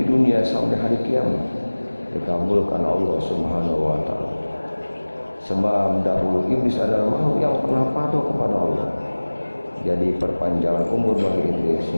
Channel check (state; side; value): inverted; both; correlation -1.00